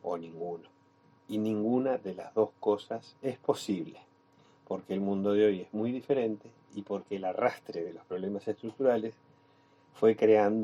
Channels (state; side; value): identical; both; correlation 1.00